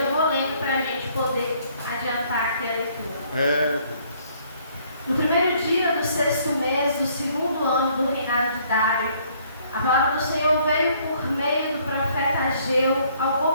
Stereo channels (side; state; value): both; inverted; correlation -0.63